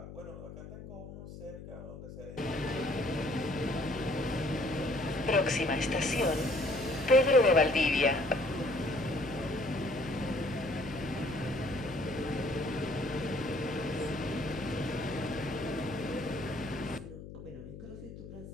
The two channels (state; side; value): noise; left; hum, 13 dB below the sound